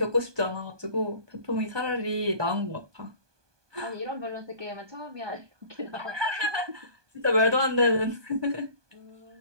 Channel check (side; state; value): left; late; 1.2 ms